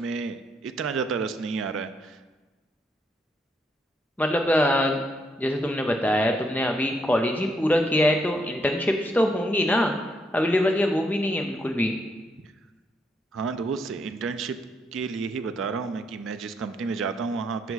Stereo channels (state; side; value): normal; both; correlation 0.76